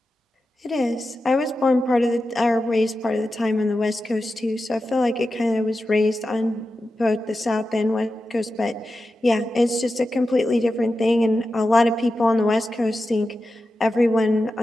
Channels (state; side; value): normal; both; correlation 0.91